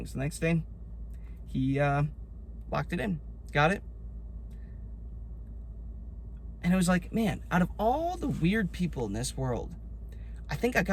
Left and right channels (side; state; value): both; identical; correlation 1.00